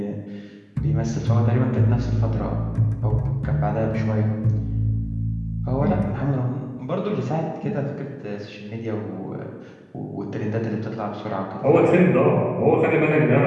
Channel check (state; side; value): identical; both; correlation 1.00